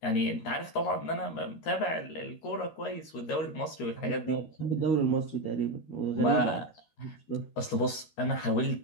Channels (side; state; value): right; late; 13 ms